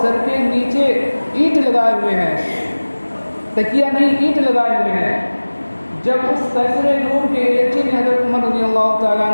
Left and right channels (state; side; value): inverted; both; correlation -1.00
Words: سر کے نیچے اینٹ لگائے ہوئے ہیں، تکیہ نہیں اینٹ لگائے ہوئے ہیں۔ جب اس قیصر روم کے ایلچی نے حضرت عمر رضی اللہ تعالیٰ